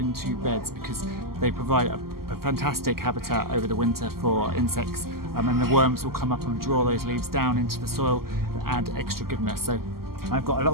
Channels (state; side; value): late; left; 0.93 ms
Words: beds, because they provide a fantastic habitat over the winter for insects, and the worms will come up and draw those leaves down into the soil and add extra goodness. So I've got a lot